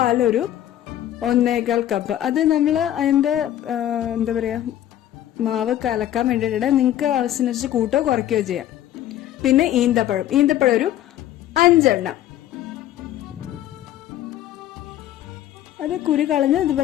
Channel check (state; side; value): quieter; right; 12.2 dB